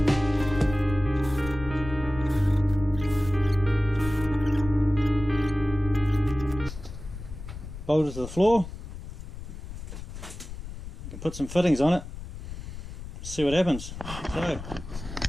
Bolt it to the floor. You can put some fittings on it, see what happens. So,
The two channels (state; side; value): noise; left; rumble, 10 dB below the sound